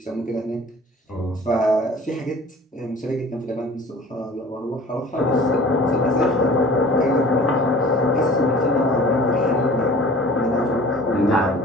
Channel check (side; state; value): both; normal; correlation 0.45